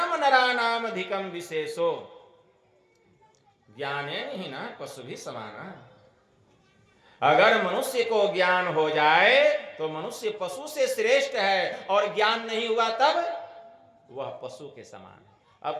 नरानाम अधिकम विशेषो, ज्ञाने नहीं ना पशु भी समाना। अगर मनुष्य को ज्ञान हो जाए तो मनुष्य पशु से श्रेष्ठ है, और ज्ञान नहीं हुआ तब वह पशु के समान है।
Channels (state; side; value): identical; both; correlation 1.00